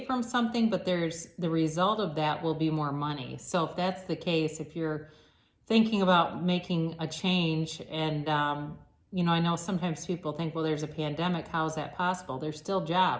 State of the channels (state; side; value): identical; both; correlation 1.00